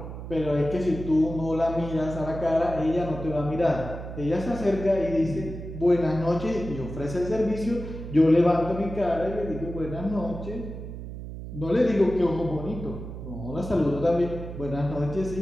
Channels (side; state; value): right; noise; hum, 9 dB below the sound